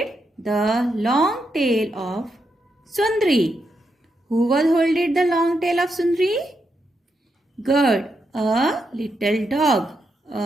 the long tail of Sundri? Who was holding the long tail of Sundri? Good. A little dog.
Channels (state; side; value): normal; both; correlation 0.83